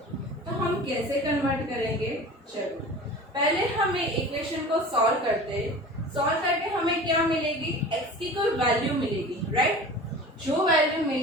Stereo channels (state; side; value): normal; both; correlation 0.38